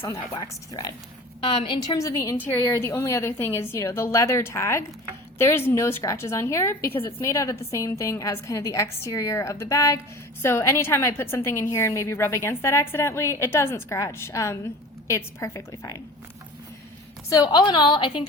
on that waxed thread. In terms of the interior, the only other thing is, you know, the leather tag. There's no scratches on here because it's made out of the same thing as kind of the exterior of the bag. So anytime I put something in here and maybe rub against that accidentally, it doesn't scratch. It's perfectly fine. So all in all, I think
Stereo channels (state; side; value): normal; both; correlation 0.39